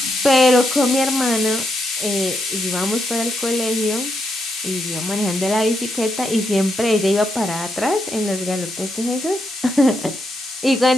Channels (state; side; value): normal; both; correlation 0.81